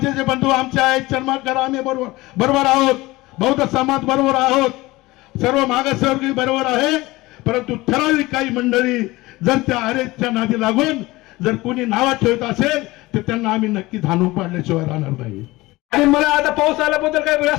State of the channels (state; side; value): quieter; right; 20.1 dB